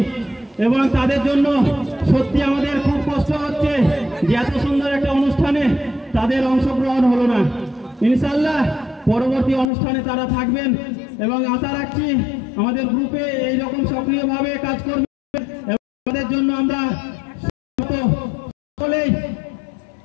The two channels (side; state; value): right; drops out; at 9.7 s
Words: এবং তাদের জন্য সত্যি আমাদের খুব কষ্ট হচ্ছে যে এত সুন্দর একটা অনুষ্ঠানে তাদের অংশগ্রহণ হলো না। ইনশাআল্লাহ পরবর্তী অনুষ্ঠানে তারা থাকবেন এবং আশা রাখছি আমাদের গ্রুপে এইরকম সক্রিয়ভাবে কাজ করবে। তাদের জন্য আমরা সকলেই